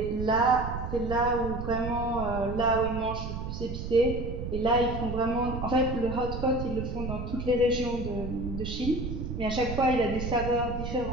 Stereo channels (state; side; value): noise; right; rumble, 6 dB below the sound